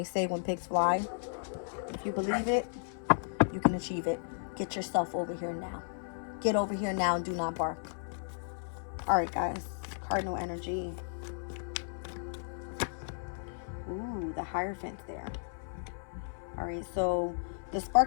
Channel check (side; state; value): right; silent; 55 dB below the other